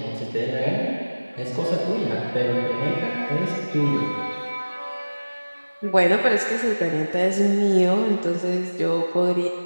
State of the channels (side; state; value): both; inverted; correlation -1.00